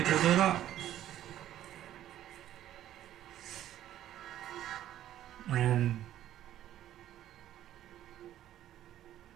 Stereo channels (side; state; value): left; quieter; 12.3 dB